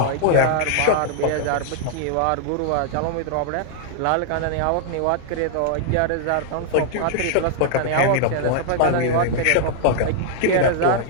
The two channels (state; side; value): different; both; correlation -0.01